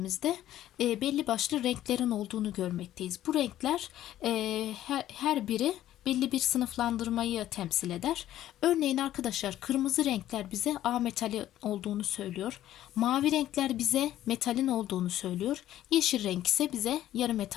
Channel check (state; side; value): quieter; right; 13.0 dB